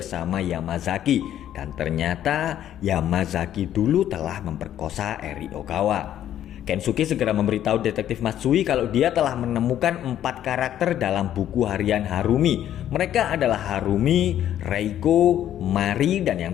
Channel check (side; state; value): right; quieter; 11.3 dB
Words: Yamazaki. Dan ternyata Yamazaki dulu telah memperkosa Eri Ogawa. Kensuke segera memberitahu detektif Matsui kalau dia telah menemukan 4 karakter dalam buku harian Harumi. Mereka adalah Harumi, Reiko, Mari, dan